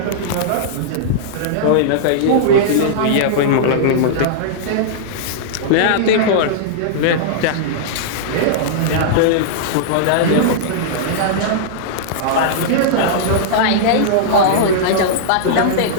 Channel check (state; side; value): different; both; correlation -0.02